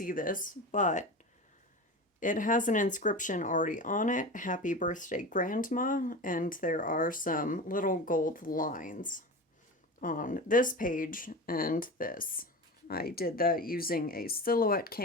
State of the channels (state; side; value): normal; both; correlation 0.29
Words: this, but it has an inscription already on it, Happy Birthday Grandma, and there are some little gold lines on this page and this. I did that using a Silhouette